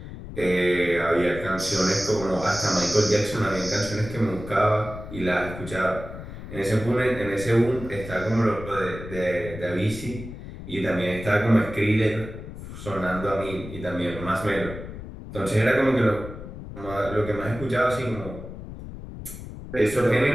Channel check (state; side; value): noise; left; rumble, 11 dB below the sound